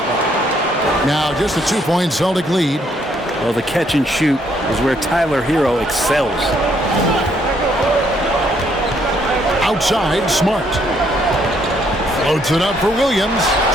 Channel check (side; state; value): both; normal; correlation 0.70